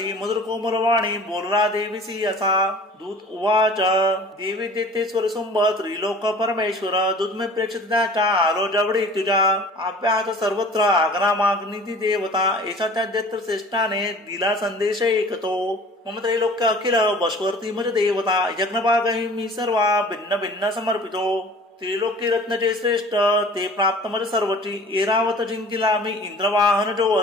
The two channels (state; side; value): normal; both; correlation 0.46